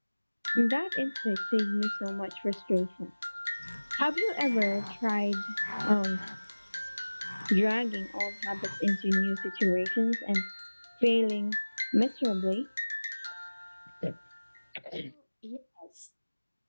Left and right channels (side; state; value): both; inverted; correlation -1.00